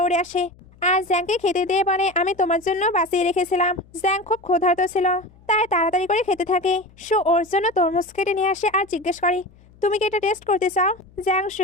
আসে আর জ্যাংকে খেতে দিয়ে বলে, আমি তোমার জন্য বাঁচিয়ে রেখেছিলাম। জ্যাং খুব ক্ষুধার্ত ছিল, তাই তাড়াতাড়ি করে খেতে থাকে। শু ওর জন্য তরমুজ কেটে নিয়ে আসে আর জিজ্ঞেস করে, তুমি কি এটা টেস্ট করতে চাও? জ্যাং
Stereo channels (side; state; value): left; noise; hum, 27 dB below the sound